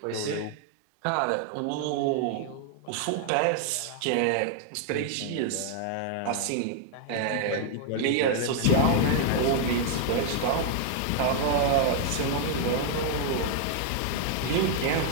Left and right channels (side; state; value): both; different; correlation 0.00